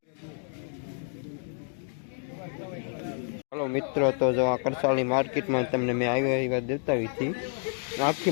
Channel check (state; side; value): silent; right; 58 dB below the other